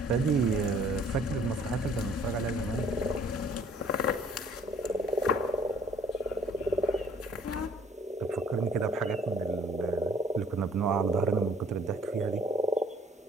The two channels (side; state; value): both; normal; correlation 0.57